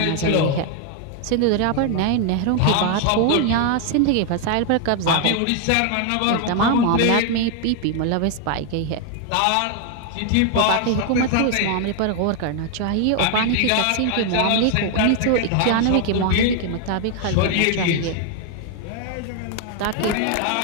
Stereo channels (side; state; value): both; different; correlation 0.00